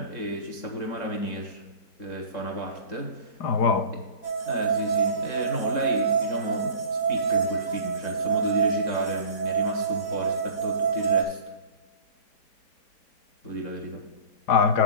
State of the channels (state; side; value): late; right; 4.1 ms